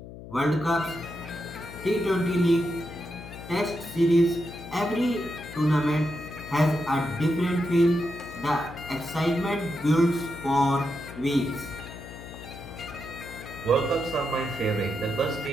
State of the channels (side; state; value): left; noise; hum, 14 dB below the sound